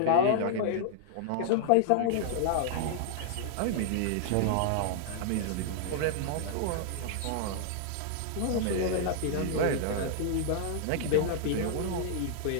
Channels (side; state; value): both; different; correlation -0.01